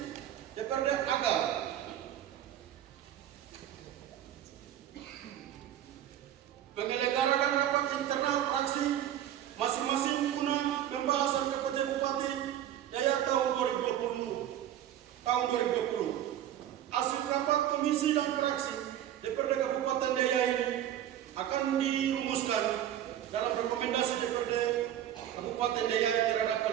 DPRD agar menyelenggarakan rapat internal fraksi masing-masing guna pembahasan kerja Bupati Daya tahun 2020. Hasil rapat komisi dan fraksi DPRD Kabupaten Daya ini akan dirumuskan dalam rekomendasi DPRD Kabupaten Daya terhadap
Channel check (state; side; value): quieter; left; 11.4 dB